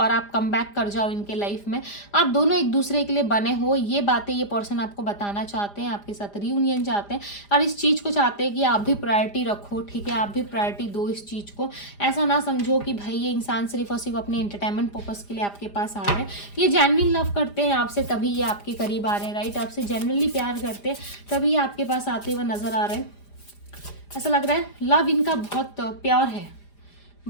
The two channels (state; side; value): late; right; 4.9 ms